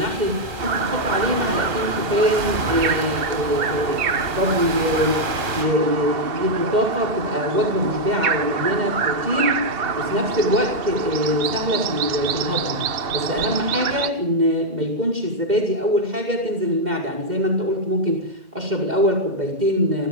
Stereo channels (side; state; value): left; late; 2.4 ms